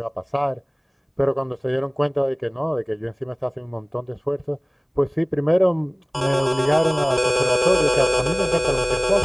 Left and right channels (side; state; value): both; identical; correlation 1.00